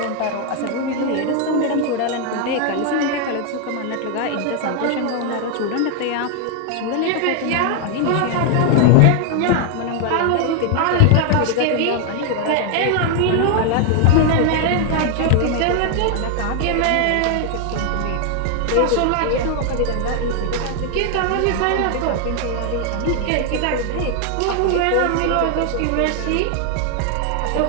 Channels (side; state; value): both; different; correlation 0.00